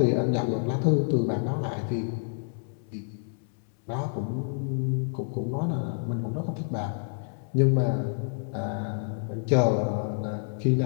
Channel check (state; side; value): silent; right; 59 dB below the other